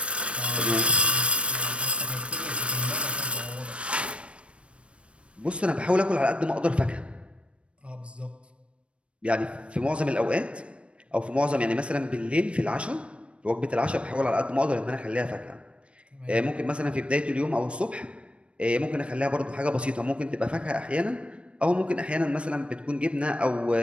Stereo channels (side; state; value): left; late; 0.060 ms